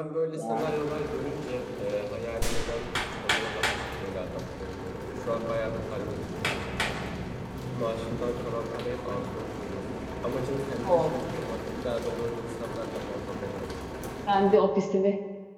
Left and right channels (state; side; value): identical; both; correlation 1.00